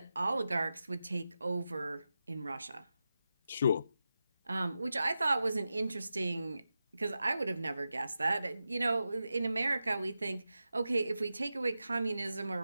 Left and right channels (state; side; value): inverted; both; correlation -0.91